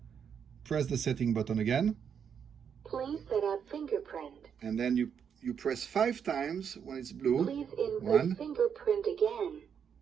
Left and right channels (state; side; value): quieter; left; 7.5 dB